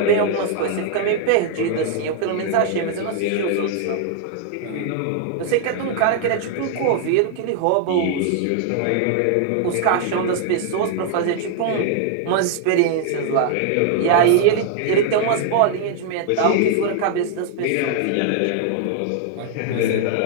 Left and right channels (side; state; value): both; different; correlation 0.00